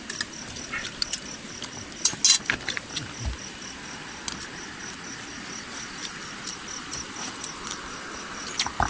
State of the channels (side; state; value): both; identical; correlation 1.00